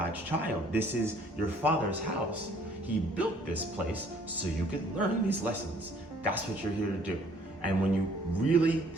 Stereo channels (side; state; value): both; normal; correlation 0.59